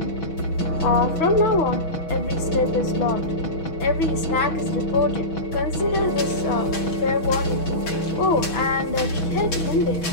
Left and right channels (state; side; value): late; right; 6.2 ms